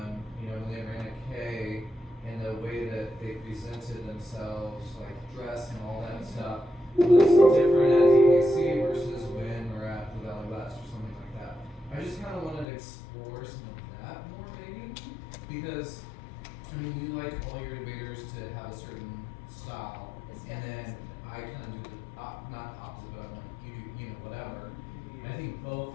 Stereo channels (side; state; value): right; drops out; at 12.7 s